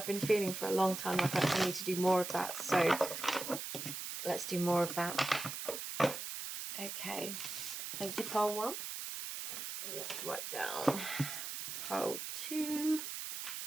been feeling for a long time like I need to do more of that, so let's do more of that. Okay, thank you, pile 1. Let's write down pile 2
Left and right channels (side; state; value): right; noise; hiss, 6 dB below the sound